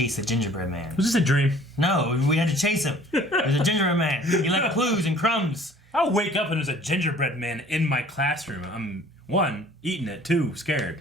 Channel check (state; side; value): normal; both; correlation 0.53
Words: the gingerbread man. Was this a dream? No, we had to chase him. There's a gingerbread man. He left clues and crumbs. I'll wake up and there's a gingerbread man in my classroom. I'm, one, eating it, two,